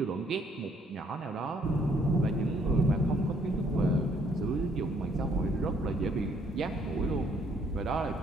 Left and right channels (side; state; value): both; normal; correlation 0.66